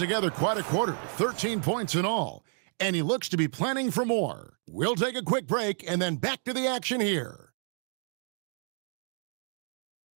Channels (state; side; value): silent; left; 58 dB below the other